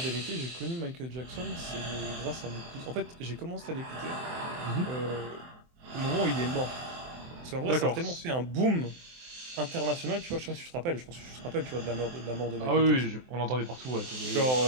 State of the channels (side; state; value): left; late; 23 ms